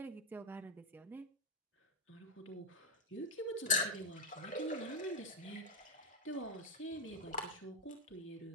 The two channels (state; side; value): normal; both; correlation 0.00